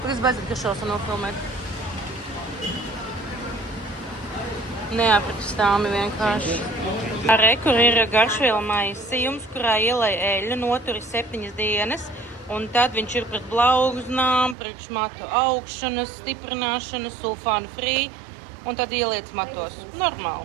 Es beidzot, ka šos nofilmēt. Neaprakstāmi vienkārši. Arī, kur ir Garšviela maisījums, kurā ielai eļļu, noturi 7 dienas. Un tad viņš ir pret blauznām, priekš matu augšanas, stiprināšanas, sulfānu free. Un tad ieliec matos.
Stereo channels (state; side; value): drops out; left; at 14.6 s